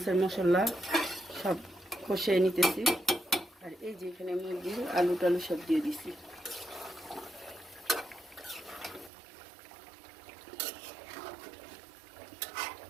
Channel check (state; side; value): drops out; left; at 9.1 s